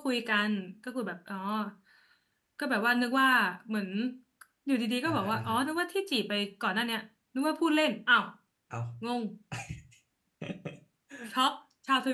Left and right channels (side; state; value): both; identical; correlation 1.00